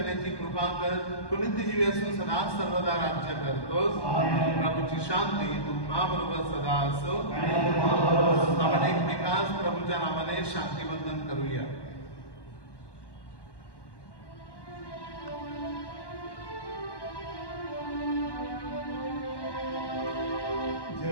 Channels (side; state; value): right; late; 1.1 ms